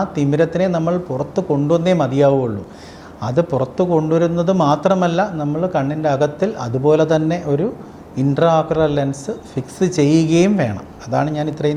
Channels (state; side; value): identical; both; correlation 1.00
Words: തിമിരത്തിനെ നമ്മൾ പുറത്ത് കൊണ്ടുവന്നേ മതിയാവുള്ളൂ. അത് പുറത്ത് കൊണ്ടുവരുന്നത് മാത്രമല്ല, നമ്മൾ കണ്ണിൻ്റെ അകത്തിൽ അതുപോലെ തന്നെ ഒരു ഇൻട്രാഓക്കുലർ ലെൻസ് ഫിക്സ് ചെയ്യുകയും വേണം. അതാണ് ഞാൻ